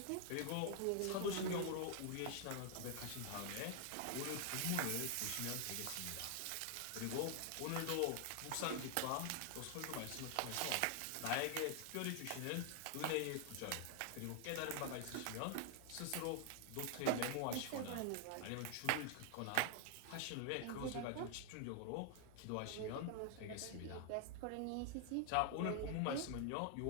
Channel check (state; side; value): different; both; correlation 0.00